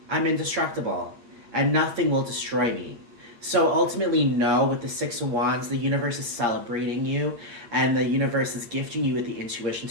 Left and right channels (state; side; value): late; left; 8.5 ms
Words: I'm indestructible, and nothing will destroy me. So ultimately, know with the Six of Wands, the universe is celebrating you, and the universe is gifting you with the intuition